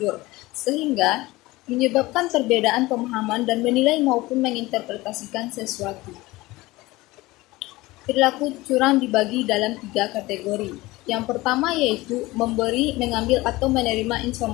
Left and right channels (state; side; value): quieter; right; 19.9 dB